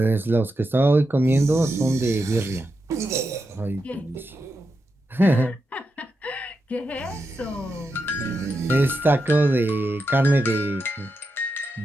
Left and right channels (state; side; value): normal; both; correlation 0.87